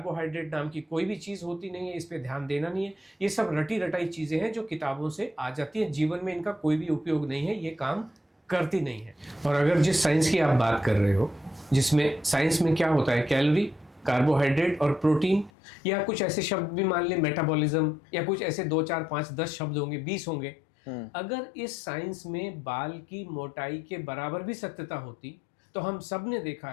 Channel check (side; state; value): right; drops out; at 15.5 s